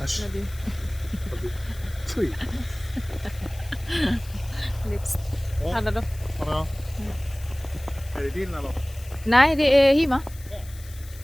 Äsch. Ja, du. Fy. Lips. Ja. Hade du? Ja. Är det din eller? Nej, det är Hima.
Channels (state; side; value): noise; left; hiss, 20 dB below the sound